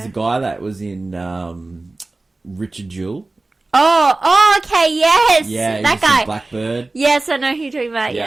a guy that was in Richard Jewell. Oh, okay, yes. Yeah, that guy. Blackbird. Yes, I know who you're talking about.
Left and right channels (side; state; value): left; quieter; 3.2 dB